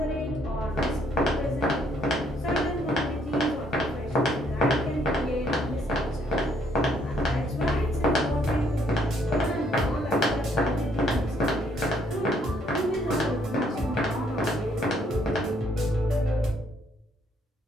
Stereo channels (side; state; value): both; normal; correlation 0.68